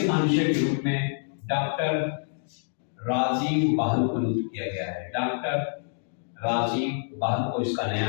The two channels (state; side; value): silent; right; digital silence